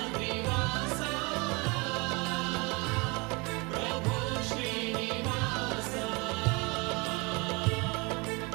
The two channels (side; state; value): left; quieter; 27.9 dB